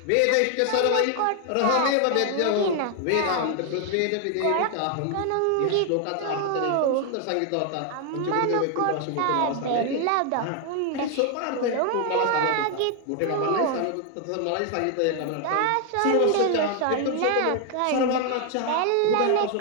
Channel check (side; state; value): both; different; correlation 0.00